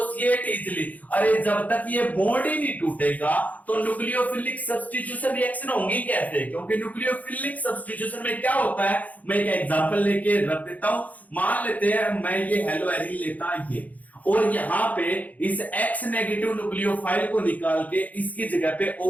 easily, अरे जब तक ये बॉन्ड ही नहीं टूटेगा तो न्यूक्लियोफिलिक सब्स्टिट्यूशन रिएक्शन होंगी कैसे, क्योंकि न्यूक्लियोफिलिक सब्स्टिट्यूशन में क्या होता है, मैं एक एग्जांपल लेके रख देता हूं। मान लेते हैं मैं ये हेलो एरिन लेता ये, और यहां पे इस X नेगेटिव न्यूक्लियोफाइल को निकाल के इसकी जगह पे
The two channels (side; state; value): right; late; 0.077 ms